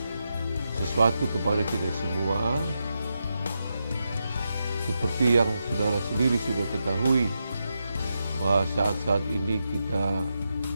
sesuatu kepada kita semua. Seperti yang saudara sendiri sudah ketahui, bahwa saat-saat ini kita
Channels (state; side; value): inverted; both; correlation -0.86